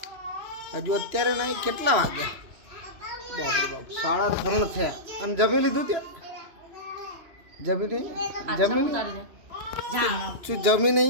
હજુ અત્યારે નહીં, કેટલા વાગ્યા? બાપરે બાપ, 3:30 થયા. અને જમી લીધું ત્યાં? જમી નહીં? જમી શું જમી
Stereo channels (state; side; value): late; left; 3.0 ms